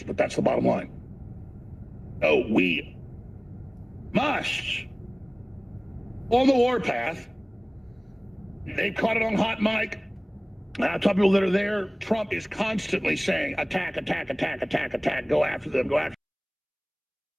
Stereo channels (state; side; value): identical; both; correlation 1.00